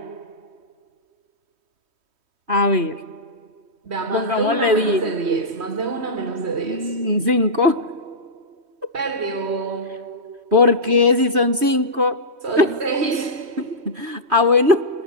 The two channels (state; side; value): late; left; 3.1 ms